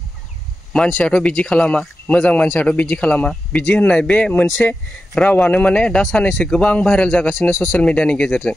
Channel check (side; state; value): both; normal; correlation 0.91